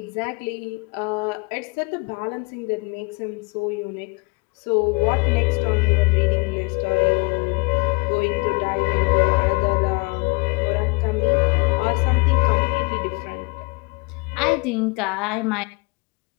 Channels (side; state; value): right; quieter; 29.0 dB